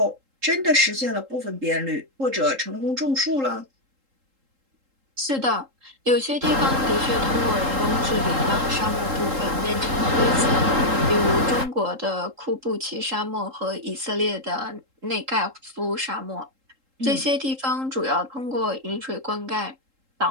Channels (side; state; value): left; late; 3.8 ms